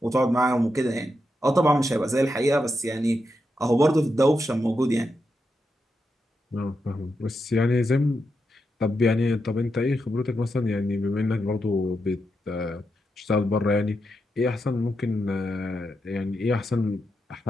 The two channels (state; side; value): normal; both; correlation 0.85